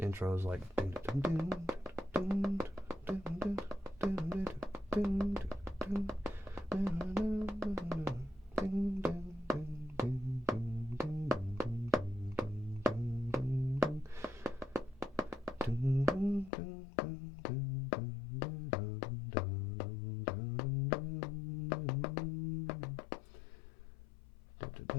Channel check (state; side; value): drops out; right; at 16.5 s